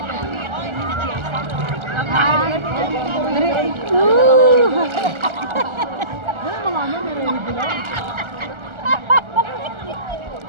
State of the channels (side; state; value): left; late; 1.4 ms